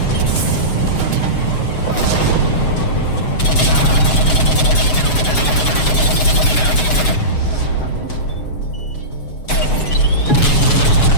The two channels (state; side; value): late; right; 7.1 ms